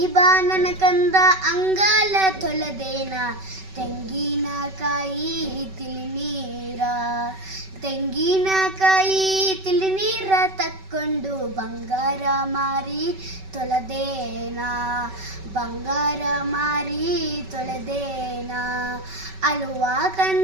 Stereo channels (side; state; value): left; late; 5.2 ms